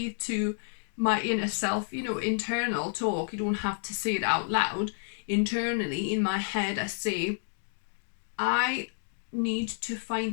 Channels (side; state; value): right; silent; digital silence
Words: to my inner self, internal talk, you don't have to say it out loud. Internally in my head, I say, I need to